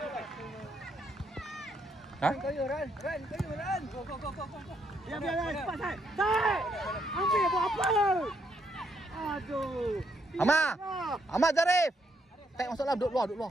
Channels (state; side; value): normal; both; correlation 0.75